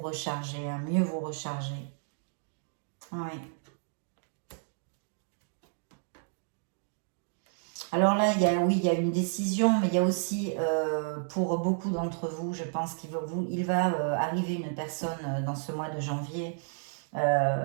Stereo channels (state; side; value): silent; left; digital silence